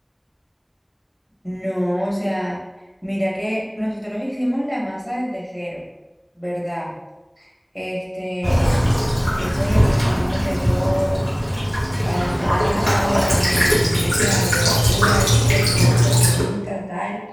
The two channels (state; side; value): identical; both; correlation 1.00